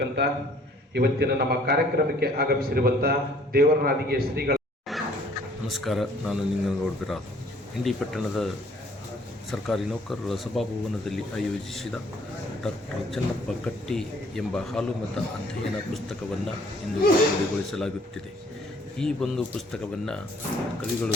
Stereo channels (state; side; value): normal; both; correlation 0.58